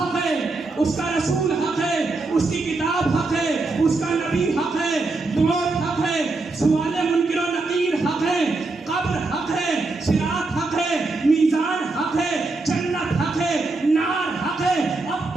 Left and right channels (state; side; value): quieter; left; 3.4 dB